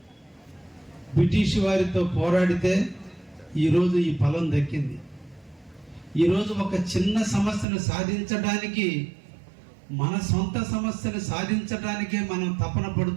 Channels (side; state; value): left; drops out; at 7.7 s